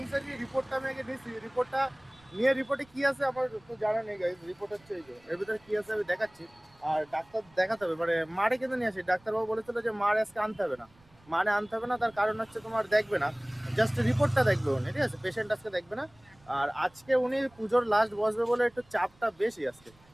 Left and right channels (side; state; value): right; noise; rumble, 30 dB below the sound